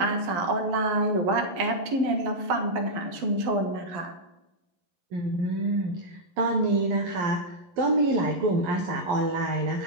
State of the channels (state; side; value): late; left; 11 ms